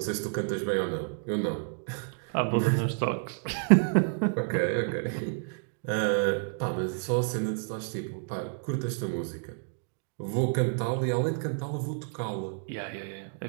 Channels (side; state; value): left; silent; digital silence